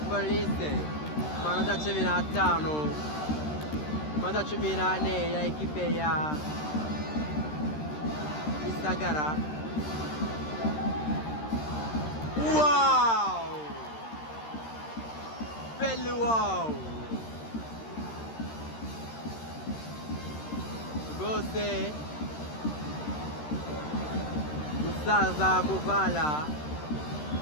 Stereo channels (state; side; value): late; right; 13 ms